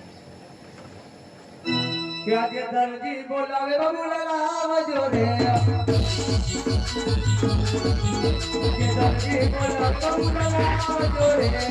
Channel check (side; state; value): both; identical; correlation 1.00